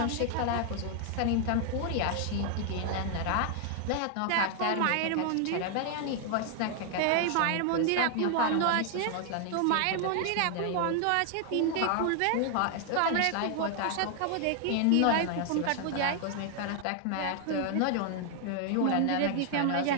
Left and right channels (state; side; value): different; both; correlation 0.00